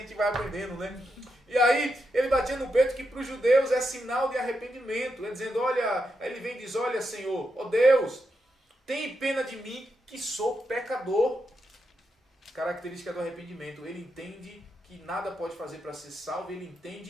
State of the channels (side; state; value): both; normal; correlation 0.84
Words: vai aprendendo, né? E aí ele batia no peito que para os judeus é sinal de arrependimento. Ele dizendo, olha, ele vem e diz, olha Senhor, ó Deus, tem pena de mim que sou pecador. Característica do arrependimento. Ele entende que nada pode fazer para ser salvo, ele